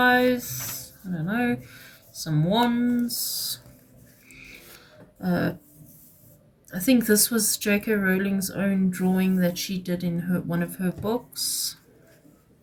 I don't know, some wands. I think this was J.K. Rowling's own drawing that she did in one of her books.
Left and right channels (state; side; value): identical; both; correlation 1.00